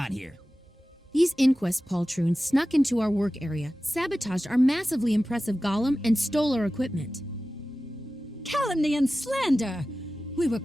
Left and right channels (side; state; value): both; normal; correlation 0.95